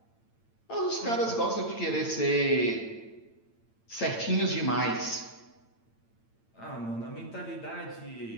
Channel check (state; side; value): late; right; 8.9 ms